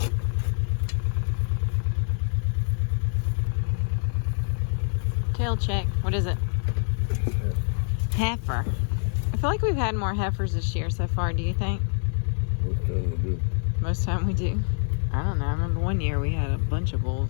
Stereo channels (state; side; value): silent; right; digital silence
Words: Tail check. What is it? Heifer. I feel like we've had more heifers this year so far, do you think? Most time we do. Most time we do. I don't know. I remember one year we had a bunch of